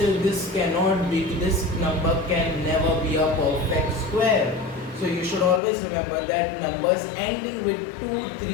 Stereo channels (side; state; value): right; drops out; at 5.6 s